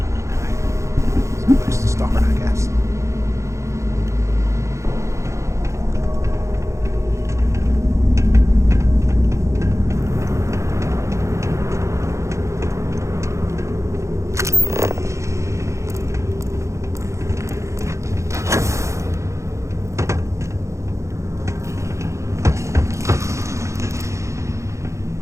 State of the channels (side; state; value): left; late; 0.14 ms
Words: It's a place to start, I guess.